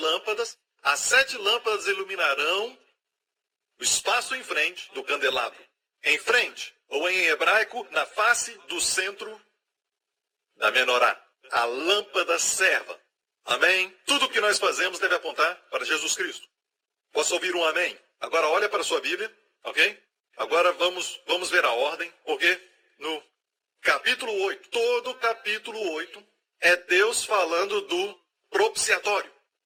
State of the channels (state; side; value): identical; both; correlation 1.00